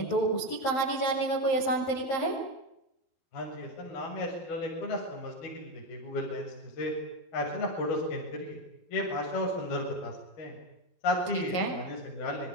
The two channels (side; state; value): right; late; 11 ms